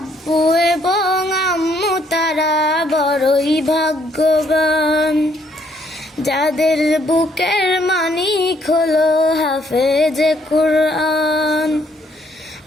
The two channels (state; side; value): normal; both; correlation 0.68